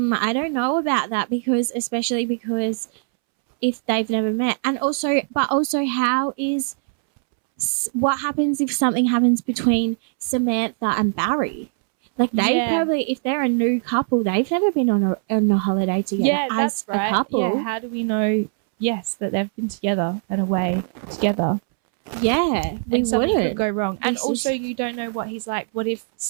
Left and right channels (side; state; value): left; silent; 64 dB below the other